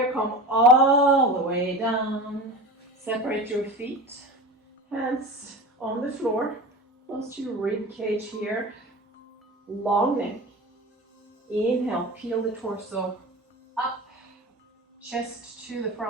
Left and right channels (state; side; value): normal; both; correlation 0.31